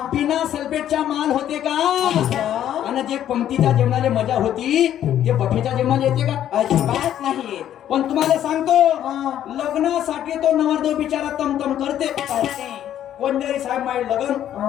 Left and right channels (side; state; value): right; quieter; 11.0 dB